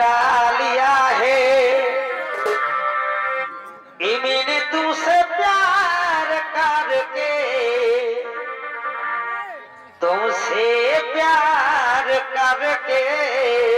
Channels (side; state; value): both; identical; correlation 1.00